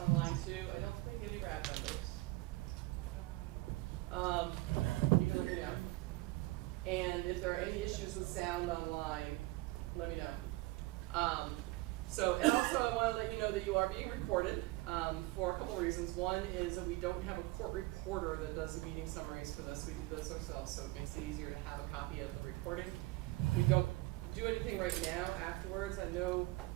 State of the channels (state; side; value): quieter; left; 20.6 dB